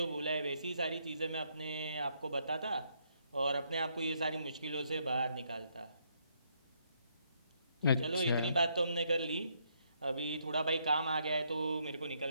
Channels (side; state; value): both; inverted; correlation -0.73